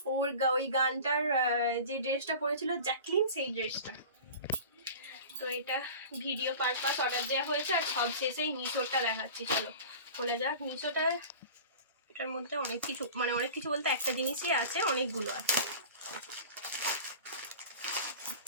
ওই গানটার যে ড্রেসটা পরেছিল জ্যাকলিন, সেই ড্রেসটা। তো এটা ভিডিও পারপাস অর্ডার দেওয়া হয়েছে। আর সব শেষেই মিশোটা দেখাচ্ছি, চলো খোলা যাক মিশোটা। এটার মধ্যে অনেক কিছু বলতে একটা জিনিসই আছে, অনেকগুলো আছে।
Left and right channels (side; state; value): both; inverted; correlation -0.37